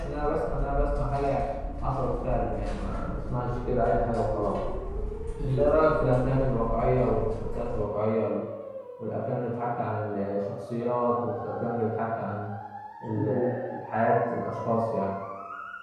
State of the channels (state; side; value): identical; both; correlation 1.00